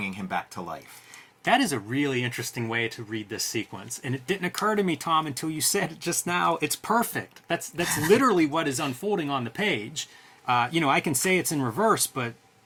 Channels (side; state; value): both; identical; correlation 1.00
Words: him back to life. That is a really interesting way to read this sequence, and it didn't occur to me, Tom, until you said it just now. It's perfect. That's literally what is unfolding on the page. I can say it's in reverse, but